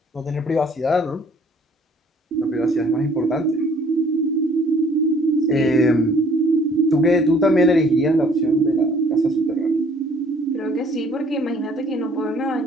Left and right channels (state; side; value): normal; both; correlation 0.58